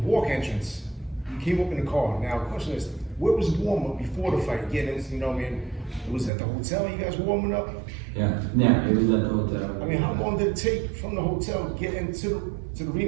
walk entrance, you came up in the car. Now, the question is, where was the warm up before the fight? Getting, it was at the hotel you guys were warming up? Yeah, it was at the hotel. I mean, how long did it take from the hotel to get into the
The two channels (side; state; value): left; drops out; at 6.3 s